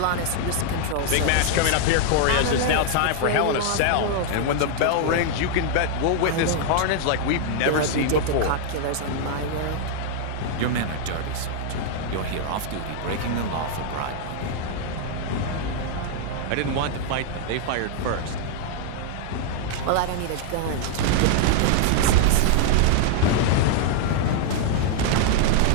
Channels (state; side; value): different; both; correlation 0.00